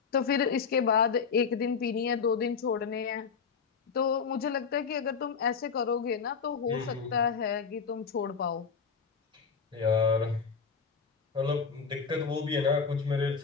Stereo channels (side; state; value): right; quieter; 5.8 dB